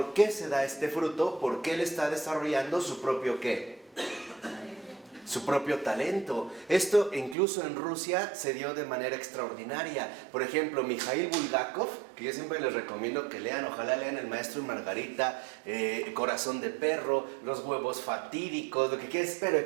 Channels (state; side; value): drops out; left; at 7.4 s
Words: qué se da este fruto? Porque él está desarrollando su propio ¿qué? Su propio talento. Esto incluso en Rusia se dio de manera extraordinaria. Por ejemplo, Mikhail Bulgakov, que yo siempre les recomiendo que lean, ojalá lean El Maestro y Margarita, Corazón de Perro, Los Huevos Fatídicos, lo que quieras, pero